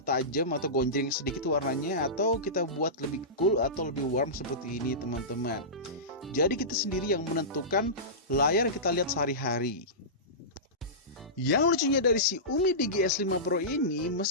tajam atau gonjreng sedikit warnanya, atau kita buat lebih cool atau lebih warm seperti ini teman-teman. Jadi kita sendiri yang menentukan layar yang kita lihat sehari-hari. Yang lucunya dari si Umi Digi S5 Pro ini,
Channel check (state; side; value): normal; both; correlation -0.19